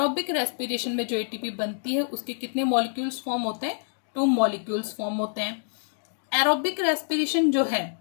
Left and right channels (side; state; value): right; silent; digital silence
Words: रेस्पिरेशन में जो एटीपी बनती है उसके कितने मॉलिक्यूल्स फॉर्म होते हैं, 2 मॉलिक्यूल्स फॉर्म होते हैं। एरोबिक रेस्पिरेशन जो है,